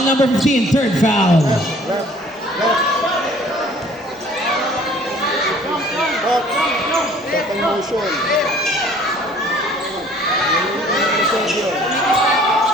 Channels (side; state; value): both; normal; correlation 0.54